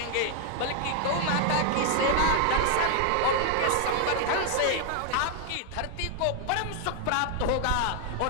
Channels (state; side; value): different; both; correlation 0.00